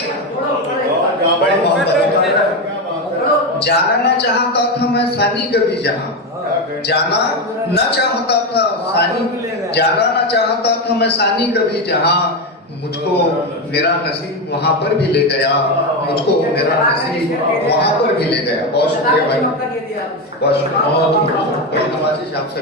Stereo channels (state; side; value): normal; both; correlation 0.13